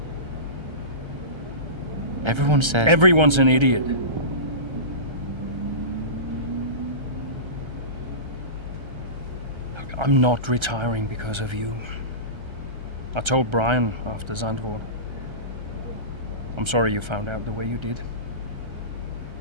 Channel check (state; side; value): late; left; 1.3 ms